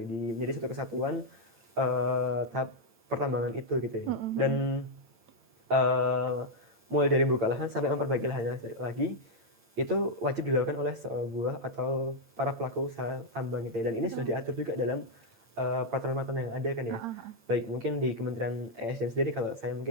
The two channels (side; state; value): left; late; 8.8 ms